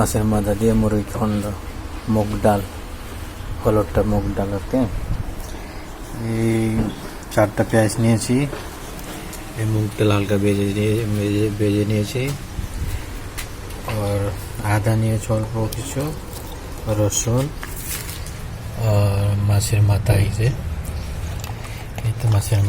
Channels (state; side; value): identical; both; correlation 1.00